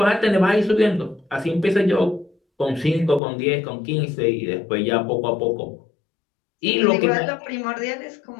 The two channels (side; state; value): right; drops out; at 3.2 s